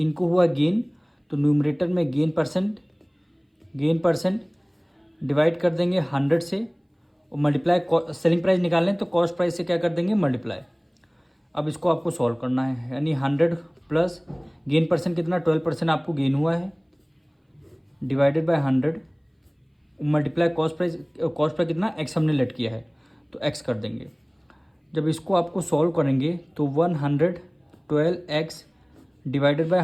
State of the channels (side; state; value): both; identical; correlation 1.00